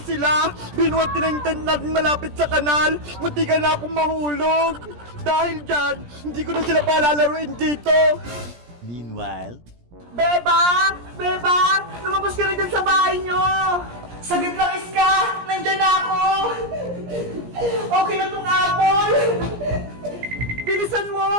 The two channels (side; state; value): left; late; 17 ms